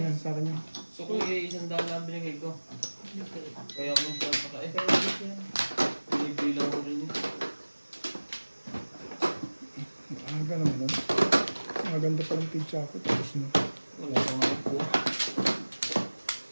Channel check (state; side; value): inverted; both; correlation -1.00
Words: yan, sa akin yan. So kung isang daan lang binigay ko. Kaya kung saan pa ka eh. Kay Rubik yan. Binibilang ko rin eh. Aga naman nun. Maganda palang pizza ako, tapos na. Wala ko nga po.